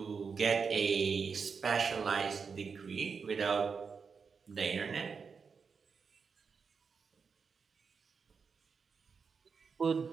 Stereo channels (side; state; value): left; quieter; 5.6 dB